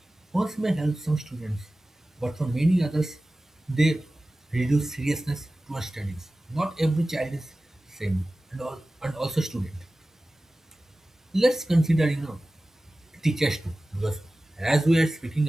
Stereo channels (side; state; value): both; normal; correlation 0.96